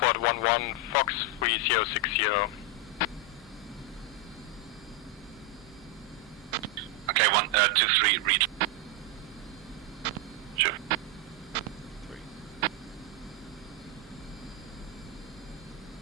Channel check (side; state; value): both; normal; correlation 0.03